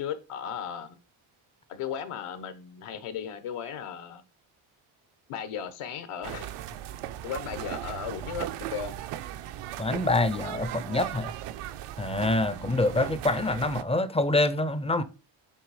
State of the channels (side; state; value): both; normal; correlation 0.40